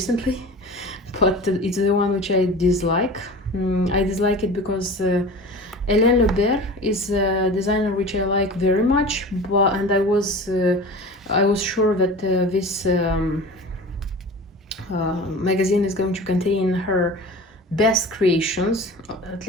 but it's the one which I dislike. I dislike it because Hélène Lebert is a designer which I like very much, and I was sure that this magazine is going to contain her best creations. At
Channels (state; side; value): normal; both; correlation 0.36